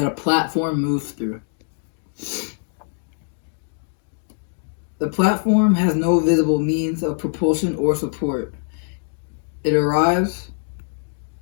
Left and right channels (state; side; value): silent; right; digital silence